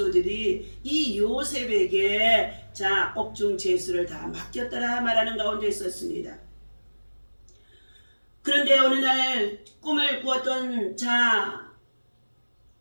이 요셉에게 옥중 죄수를 다 맡겼더라 말하는 가운데 있었습니다. 그런데 어느 날 꿈을 꾸었던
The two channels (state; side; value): inverted; both; correlation -1.00